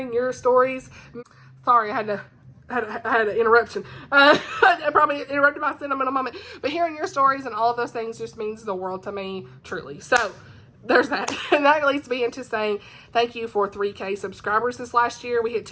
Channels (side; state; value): both; identical; correlation 1.00